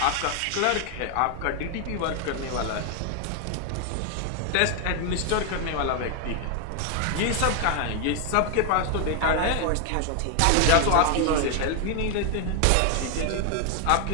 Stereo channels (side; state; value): both; different; correlation 0.00